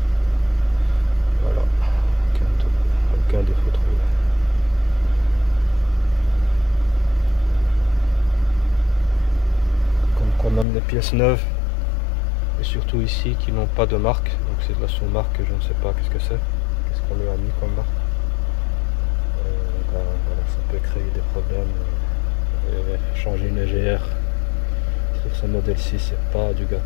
Voilà, aucun défaut trouvé. Comme même les pièces neuves et surtout ici qui n'ont pas de marque, donc c'est de la sous-marque, je ne sais pas qu'est-ce que c'est, qu'est-ce qu'on lui a mis comme marque. Ben, voilà, ça peut créer des problèmes. Et changer une EGR sur ce modèle-ci, c'est pas du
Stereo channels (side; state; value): right; drops out; at 10.7 s